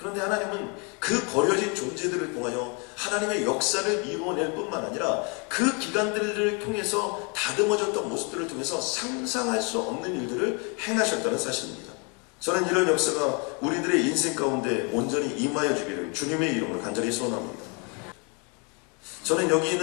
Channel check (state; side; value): quieter; right; 33.9 dB